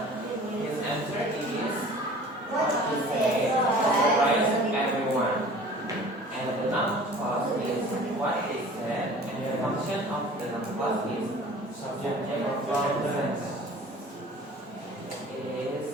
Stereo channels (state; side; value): normal; both; correlation 0.45